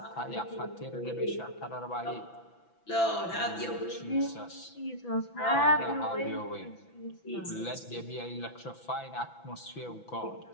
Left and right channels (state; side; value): late; right; 6.0 ms